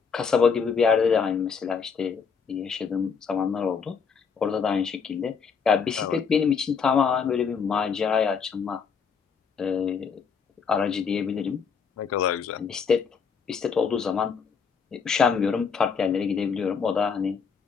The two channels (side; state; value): right; quieter; 6.1 dB